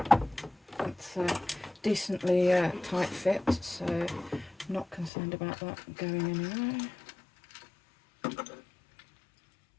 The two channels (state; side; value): drops out; right; at 5.1 s